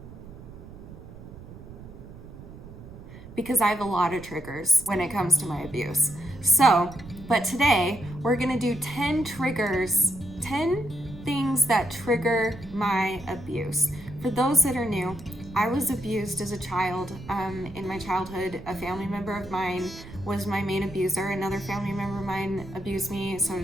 because I have a lot of triggers when it comes to my abuse. So, but today we're gonna do 10 triggers, 10 things that trigger my abuse. For those that are new, I was abused as a child. In my childhood, a family member of mine was my main abuser. Another family member of mine abused me, so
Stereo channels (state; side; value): noise; right; rumble, 15 dB below the sound